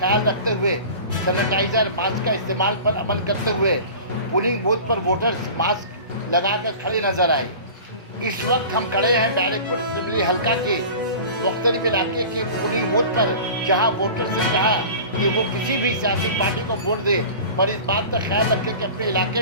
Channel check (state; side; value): inverted; both; correlation -0.38